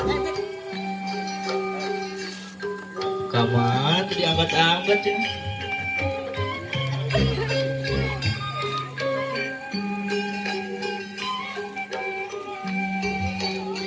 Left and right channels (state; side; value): identical; both; correlation 1.00